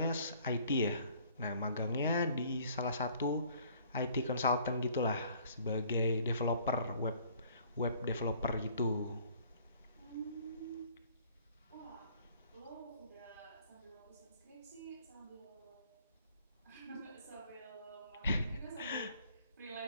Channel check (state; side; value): inverted; both; correlation -0.57